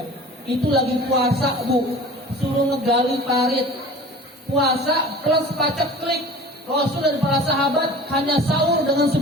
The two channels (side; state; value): both; normal; correlation 0.41